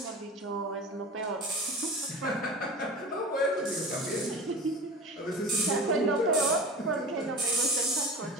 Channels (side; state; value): both; normal; correlation 0.33